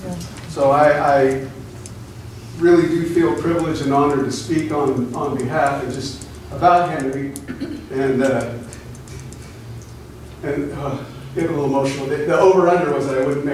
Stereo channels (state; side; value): identical; both; correlation 1.00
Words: So I really do feel privileged and honored to speak on behalf and just about Henry, and get a little emotional. The over-under was that I wouldn't